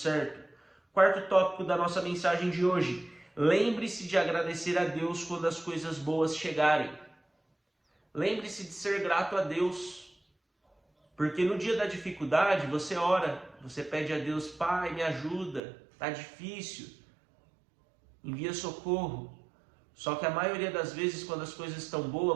Quarto tópico da nossa mensagem de hoje. Lembre-se de agradecer a Deus quando as coisas boas chegarem. Lembre-se de ser grato a Deus. Porque no dia da dificuldade você ora, você pede a Deus, Pai, me ajuda, tá difícil, envia socorro. Só que a maioria das vezes, quando as coisas estão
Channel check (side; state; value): left; drops out; at 15.6 s